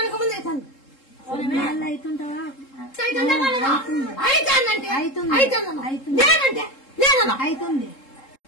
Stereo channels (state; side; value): late; right; 3.7 ms